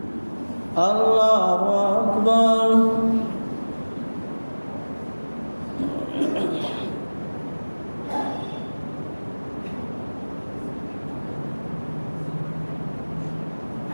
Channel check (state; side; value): inverted; both; correlation -1.00